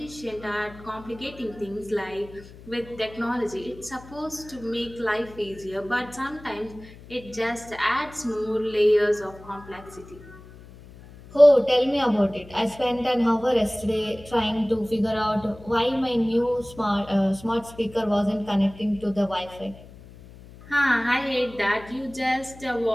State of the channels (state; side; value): noise; left; hum, 19 dB below the sound